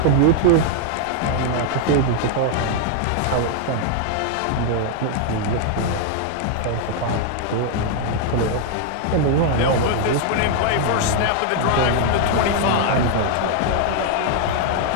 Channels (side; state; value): both; different; correlation 0.00